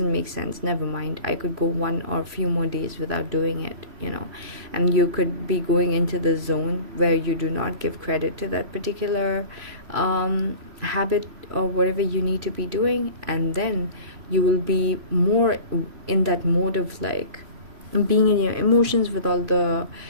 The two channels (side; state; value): left; late; 3.0 ms